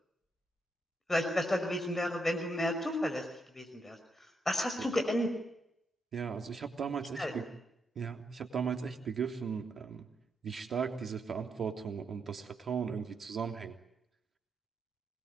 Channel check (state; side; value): normal; both; correlation 0.80